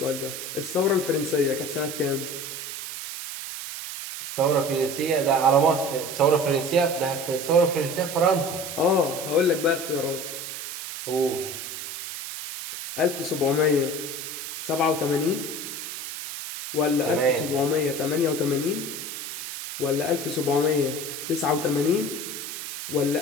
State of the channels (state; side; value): noise; right; hiss, 8 dB below the sound